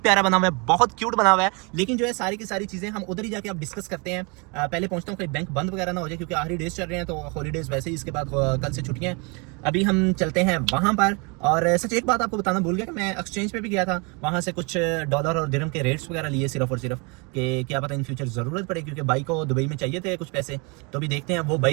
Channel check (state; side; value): quieter; left; 31.1 dB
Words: प्यारा बना हुआ है, बहुत क्यूट बना हुआ है। लेकिन जो है सारी की सारी चीज़ें हम उधर ही जाके अब डिस्कस करते हैं। पहले पहुंचता हूँ कोई बैंक बंद वगैरह ना हो जाए, क्योंकि आखिरी डेज चल रहे हैं तो हॉलीडेज वैसे ही, इसके बाद कल से छुट्टियां हैं। अभी हम चलते हैं वहाँ पर। और सच एक बात आपको बताना भूल गया कि मैं एक्सचेंज पे भी गया था, वहाँ से कुछ डॉलर और दिरहम के रेट्स वगैरह लिए सिर्फ और सिर्फ, कि क्या पता इन फ्यूचर ज़रूरत पड़े, क्योंकि भाई को दुबई में चाहिए थे कुछ पैसे। तो अभी देखते हैं वो